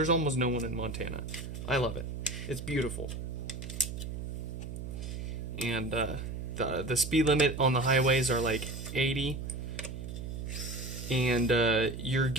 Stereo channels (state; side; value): noise; right; hum, 7 dB below the sound